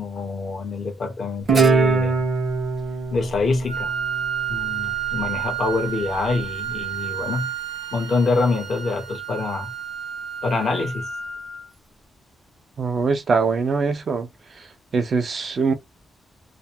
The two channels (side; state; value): both; normal; correlation 0.70